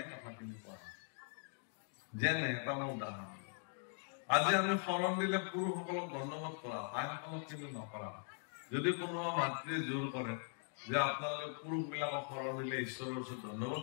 কথাখিনি কোৱা। যেনে এটা মোৰ উদাহৰণ, আজি আমি শৰণ দিলে পুৰুষসকলক দণ্ডবোধ কৰা, আইসকলক কিন্তু নকৰা। যদি কোনোবা মাতৃয়ে জোৰ কৰে যে আপোনালোকে পুৰুষ বিলাকক শৰণ দিলে ঈশ্বৰৰ ওচৰত দণ্ডবোধ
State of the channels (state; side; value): silent; right; 50 dB below the other